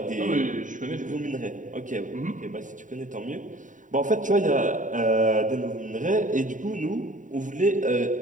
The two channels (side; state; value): left; late; 0.37 ms